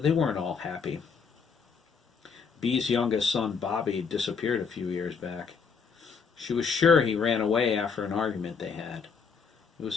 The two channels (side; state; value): right; quieter; 5.7 dB